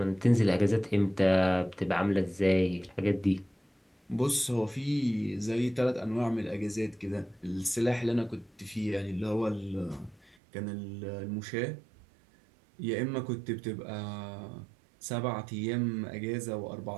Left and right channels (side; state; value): left; drops out; at 10.4 s